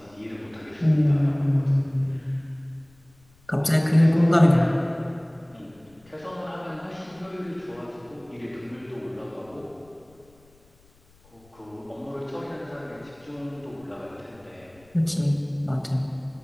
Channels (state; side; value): noise; left; rumble, 30 dB below the sound